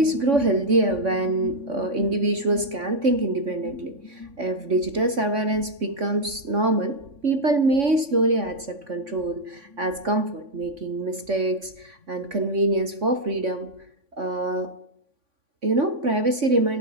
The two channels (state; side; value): late; left; 3.5 ms